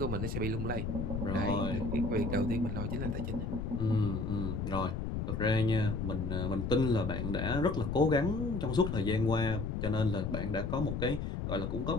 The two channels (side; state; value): left; noise; rumble, 2 dB below the sound